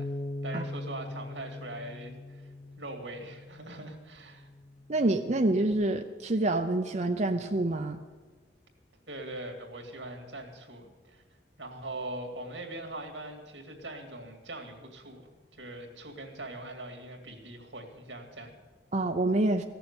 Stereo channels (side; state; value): both; normal; correlation 0.52